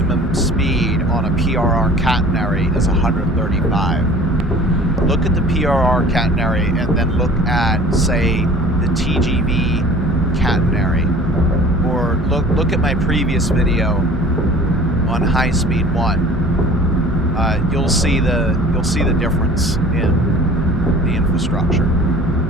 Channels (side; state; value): both; normal; correlation 0.46